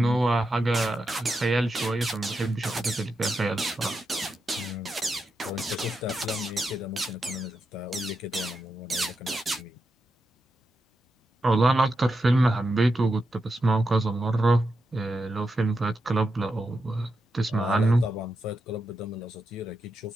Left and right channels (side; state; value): both; normal; correlation 0.86